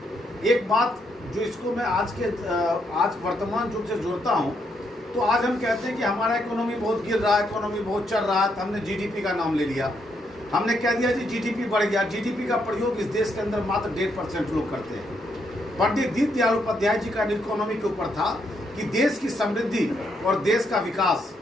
एक बात जो इसको मैं आज वर्तमान युग से जोड़ता हूँ, तो आज हम कहते हैं कि हमारा इकोनॉमी बहुत गिर रहा है, इकोनॉमी बहुत चल रहा है, तो हमने जीडीपी का नाम ले लिया। हमने कह दिया जी जीडीपी बढ़ गया। जीडीपी का प्रयोग इस देश के अंदर मात्र 1.5% लोग करते हैं। पंडित दीनदयाल उपाध्याय जी का इकोनॉमी के ऊपर था कि देश की समृद्धि और देश का विकास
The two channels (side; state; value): both; normal; correlation 0.77